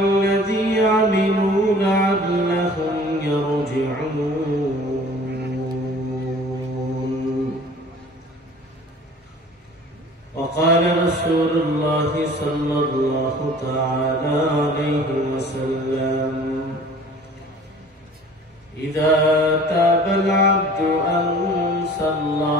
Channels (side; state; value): both; normal; correlation 0.47